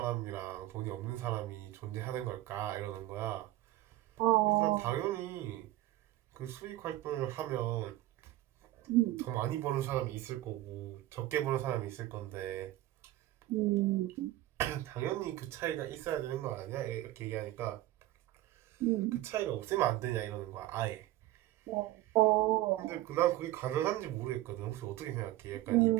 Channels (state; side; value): quieter; left; 15.8 dB